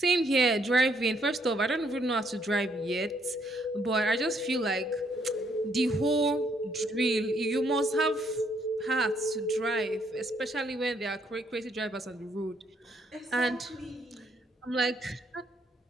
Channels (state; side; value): normal; both; correlation 0.70